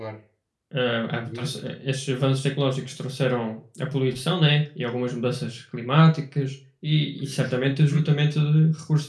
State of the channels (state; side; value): identical; both; correlation 1.00